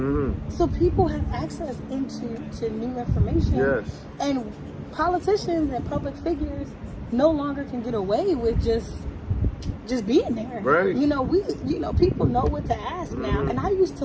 So people have access into new information. And politicians and public figures no longer can get away with just being there. You know, people know what to ask now. And I used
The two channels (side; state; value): both; identical; correlation 1.00